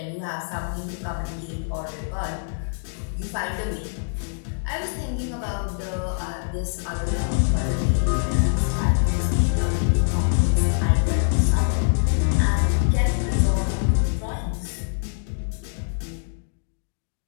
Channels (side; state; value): right; silent; digital silence